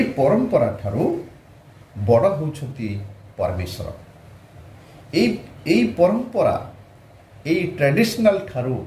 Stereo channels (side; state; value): both; identical; correlation 1.00